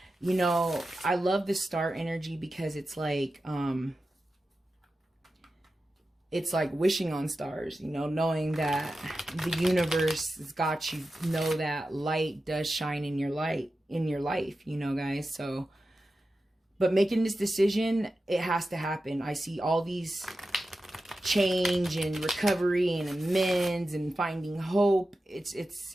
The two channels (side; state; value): both; normal; correlation 0.92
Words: you know, I love the Star energy because it's like wishing on stars, you know, knowing that the universe has got you, know that light does shine in your life, you know, guys. So, but making this decision, it has to happen. I see all these change and recovery and amends and finding hope.